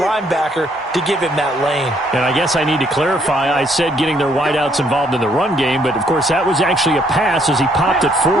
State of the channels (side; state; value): both; normal; correlation 0.68